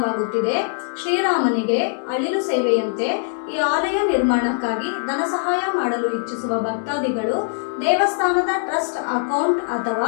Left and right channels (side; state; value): right; silent; 65 dB below the other